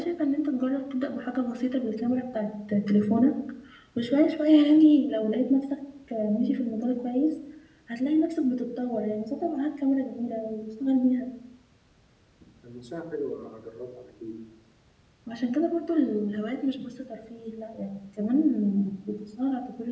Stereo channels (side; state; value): both; identical; correlation 1.00